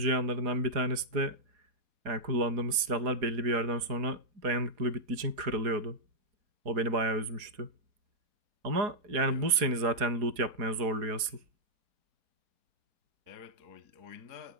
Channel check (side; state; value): left; late; 4.2 ms